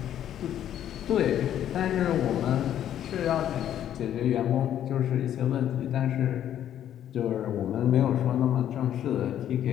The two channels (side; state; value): right; quieter; 10.8 dB